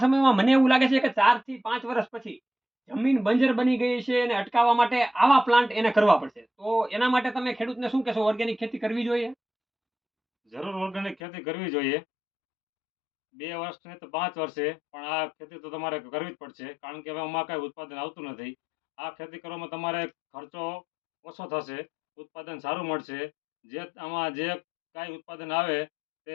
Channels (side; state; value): right; drops out; at 11.2 s